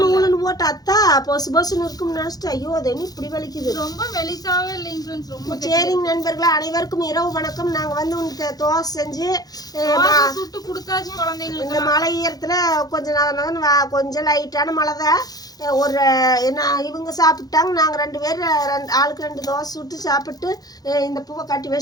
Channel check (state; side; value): late; right; 0.19 ms